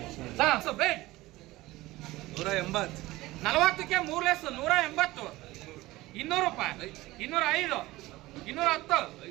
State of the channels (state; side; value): quieter; left; 18.7 dB